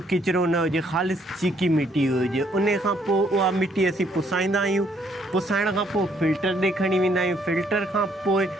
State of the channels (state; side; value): normal; both; correlation 0.68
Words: किचिरो न हुजे, ख़ालिस चीकी मिटी हुजे। उन खां पोइ उहा मिटी असीं पुसाईंदा आहियूं। पुसाइण खां पोइ फिल्टर ॾे खणी वेंदा आहियूं। फिल्टर खां पोइ